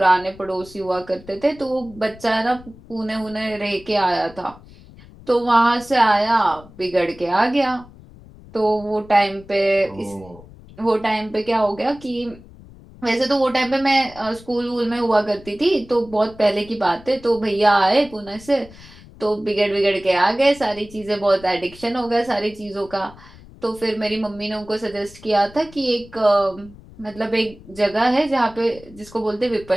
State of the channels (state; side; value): noise; left; rumble, 21 dB below the sound